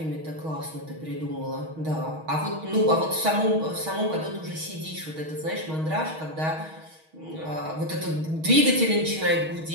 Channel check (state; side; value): late; left; 6.3 ms